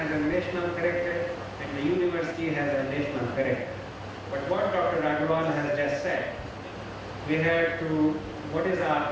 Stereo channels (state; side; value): identical; both; correlation 1.00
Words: a national character and the university has a national character. But what Dr. Agarwal has just said, we have to, what is our